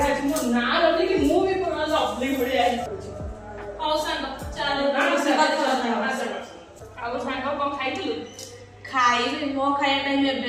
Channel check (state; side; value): identical; both; correlation 1.00